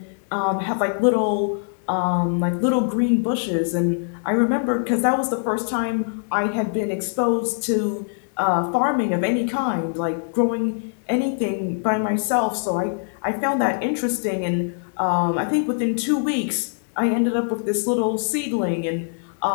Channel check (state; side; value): silent; right; digital silence